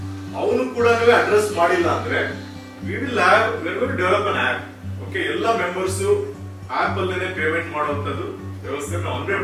ಅವನು ಕೂಡ ಅಡ್ರೆಸ್ ಮಾಡಿಲ್ಲ ಅಂದ್ರೆ we will develop an app. Okay, ಎಲ್ಲ ಮೆಂಬರ್ಸ್ ಆಪ್ ಅಲ್ಲೇನೆ ಪೇಮೆಂಟ್ ಮಾಡುವಂತದ್ದು ವ್ಯವಸ್ಥೆ ನಾವು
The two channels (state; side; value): identical; both; correlation 1.00